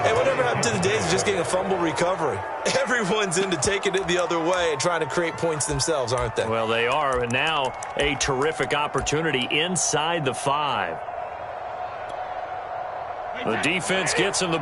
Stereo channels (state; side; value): identical; both; correlation 1.00